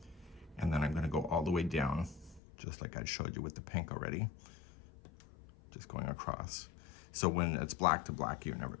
And then I'm going to go all the way down, just like I showed you with the pink already, just going across. So when it's black to black, you're never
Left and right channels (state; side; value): drops out; right; at 2.4 s